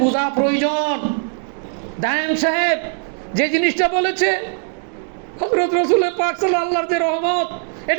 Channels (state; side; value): silent; left; 60 dB below the other